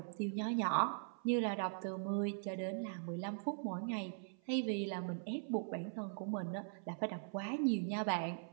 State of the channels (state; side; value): silent; left; 51 dB below the other